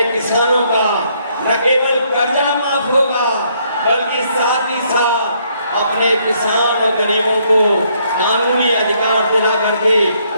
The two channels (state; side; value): inverted; both; correlation -0.70